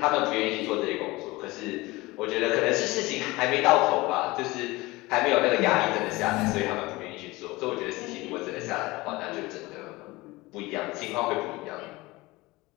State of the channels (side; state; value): right; quieter; 21.2 dB